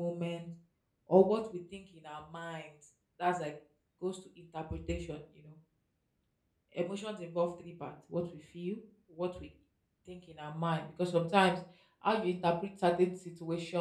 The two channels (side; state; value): both; identical; correlation 1.00